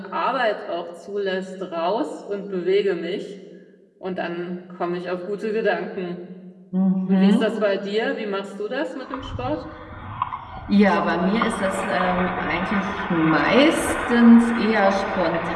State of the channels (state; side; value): identical; both; correlation 1.00